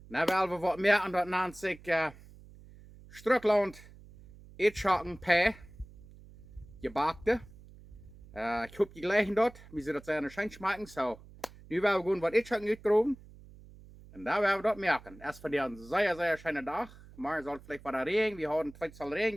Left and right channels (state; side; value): noise; right; hum, 21 dB below the sound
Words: Dan willen we wat merken dat nennt zich Schtrucklaunt Ätschoken P. Gjebackte. Ik hoop die gleichen dort. We zullen dat zijn schön schmecken. So, nu willen we gewoon wat Ätschoken uitgroeven. En daar willen we dat merken. Erst voor een zeer schöne dag. Maar soll vielleicht bei der Regen. Wir haben zweimal Regen